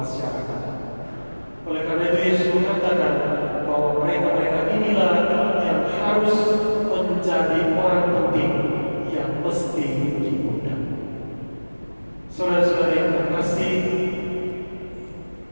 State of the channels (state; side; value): inverted; both; correlation -1.00